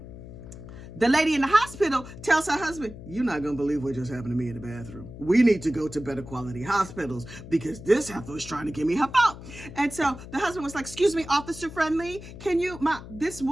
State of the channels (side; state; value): left; noise; hum, 14 dB below the sound